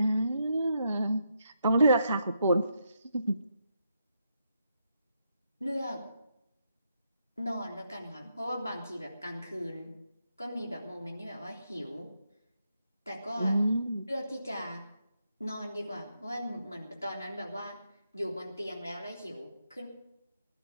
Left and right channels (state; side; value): inverted; both; correlation -0.81